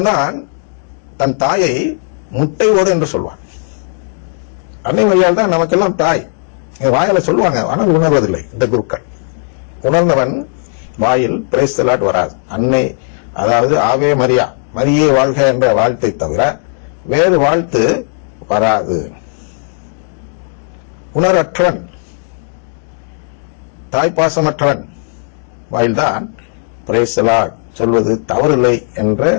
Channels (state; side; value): silent; right; digital silence